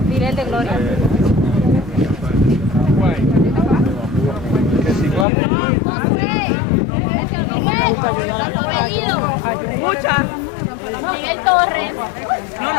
Diré el de Gloria. Muchas. Miguel Torres. No.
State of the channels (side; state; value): right; drops out; at 5.2 s